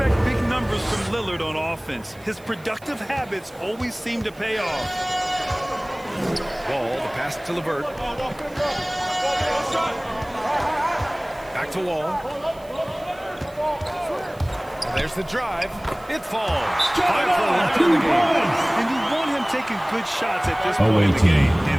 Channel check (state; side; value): noise; right; hiss, 26 dB below the sound